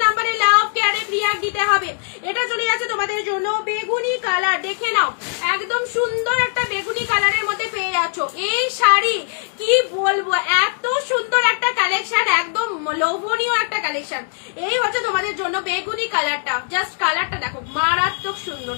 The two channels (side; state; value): right; silent; digital silence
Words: নাম্বারে লাভ কেয়ারে রিয়াক্ট দিতে হবে। এটা চলে যাচ্ছে তোমাদের জন্য বেগুনি কালার, দেখে নাও একদম সুন্দর একটা বেগুনি কালারের মধ্যে পেয়ে যাচ্ছ এই শাড়ি। কি বলবো, এত সুন্দর একটা কালেকশন, একদম লোভনীয় একটা কালেকশন। এই হচ্ছে তোমাদের জন্য বেগুনি কালারটা, জাস্ট কালারটা দেখো মারাত্মক সুন্দর,